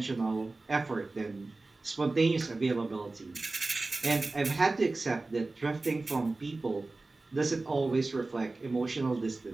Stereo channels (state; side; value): quieter; left; 3.3 dB